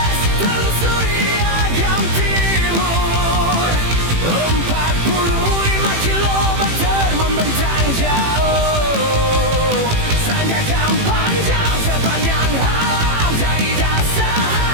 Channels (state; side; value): late; left; 18 ms